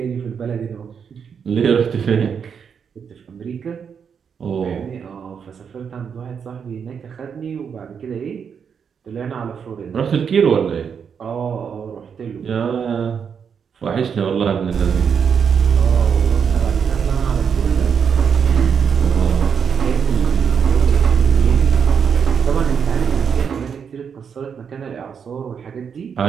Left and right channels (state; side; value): quieter; left; 6.9 dB